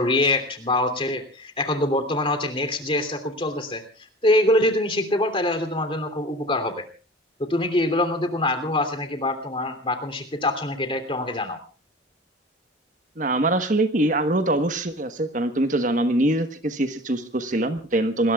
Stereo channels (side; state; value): both; normal; correlation 0.38